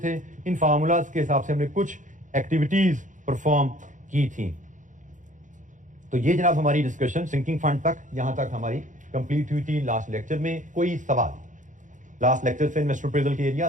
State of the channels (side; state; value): left; late; 0.37 ms